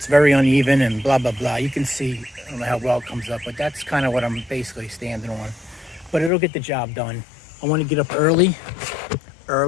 very uneven and blah, blah, blah. You can see, I don't know how well it comes up, but that's kind of what I'm basically standing on. But it'll get the job done. I want to get up early.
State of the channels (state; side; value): drops out; right; at 6.3 s